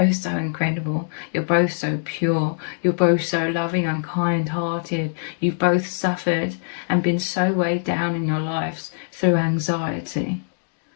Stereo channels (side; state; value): right; silent; digital silence